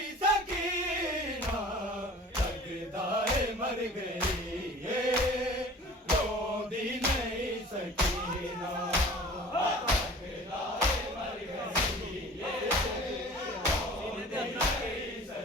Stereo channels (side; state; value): both; normal; correlation 0.44